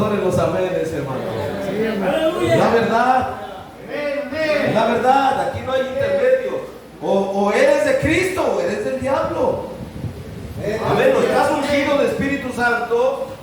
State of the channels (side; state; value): both; identical; correlation 1.00